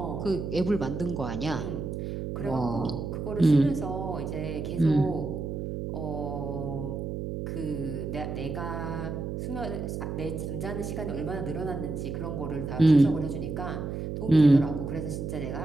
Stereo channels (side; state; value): right; noise; hum, 4 dB below the sound